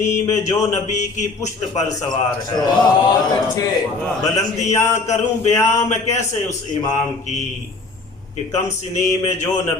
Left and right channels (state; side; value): quieter; right; 3.7 dB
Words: میں جو نبی کی پشت پر سوار ہے. بلندیاں کروں بیاں میں کیسے اس امام کی. کہ کم سنی میں جو